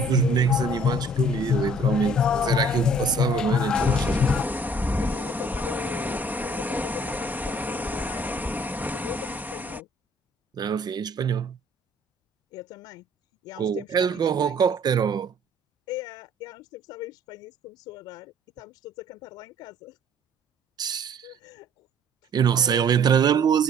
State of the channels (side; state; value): both; normal; correlation 0.57